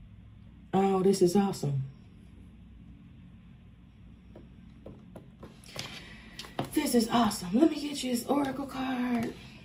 Oh, this is awesome. This is awesome. Let me get you this oracle card.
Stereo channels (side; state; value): both; identical; correlation 1.00